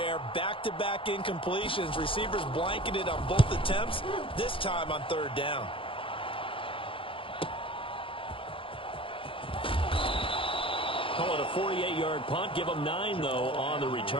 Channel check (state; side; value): late; right; 0.25 ms